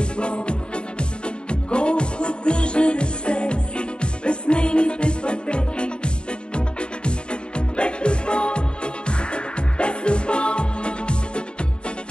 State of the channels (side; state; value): right; late; 0.052 ms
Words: Колко тъжен е свет, без нейните пътеки. Без любов, без любов,